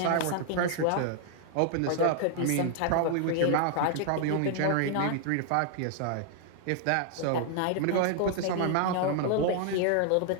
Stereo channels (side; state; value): both; different; correlation 0.00